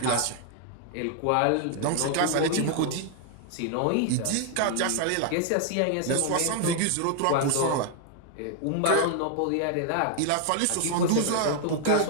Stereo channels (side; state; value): both; different; correlation 0.00